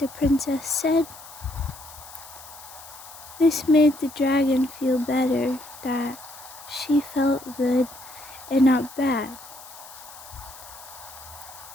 princess said. This made the dragon feel better, that she felt good and not bad.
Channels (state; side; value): noise; left; hiss, 17 dB below the sound